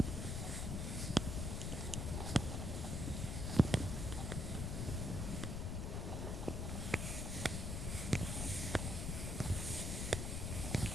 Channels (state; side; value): noise; left; rumble, 1 dB below the sound